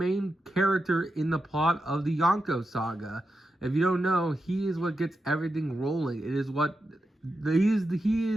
character in the plot of the Yonko saga. If you don't know, he is what gets everything rolling. It is what he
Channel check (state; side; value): normal; both; correlation 0.88